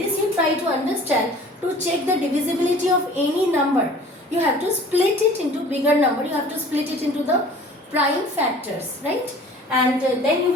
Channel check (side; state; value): both; normal; correlation 0.47